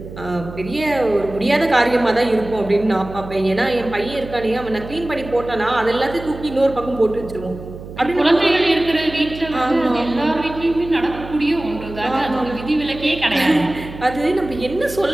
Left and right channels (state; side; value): noise; right; hum, 13 dB below the sound